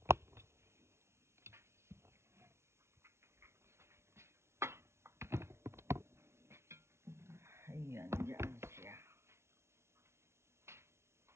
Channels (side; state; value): left; late; 0.13 ms